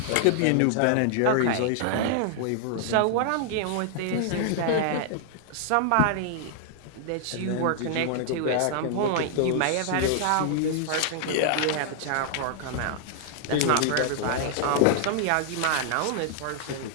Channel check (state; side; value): different; both; correlation -0.01